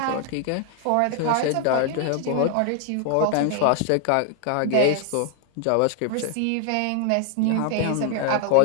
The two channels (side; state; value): both; different; correlation 0.00